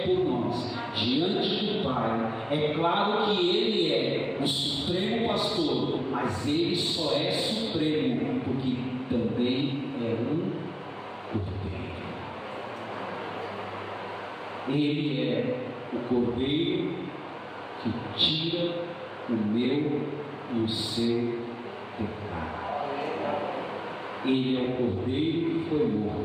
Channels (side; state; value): both; identical; correlation 1.00